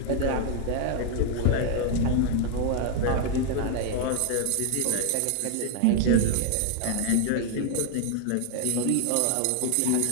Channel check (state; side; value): different; both; correlation 0.00